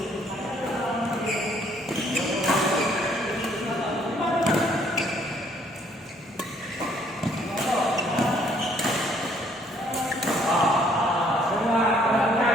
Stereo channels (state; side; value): normal; both; correlation 0.64